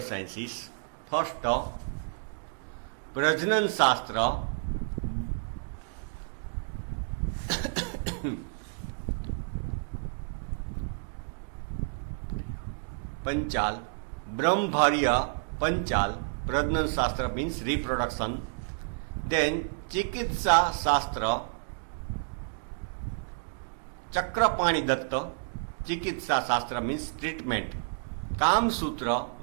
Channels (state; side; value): silent; left; digital silence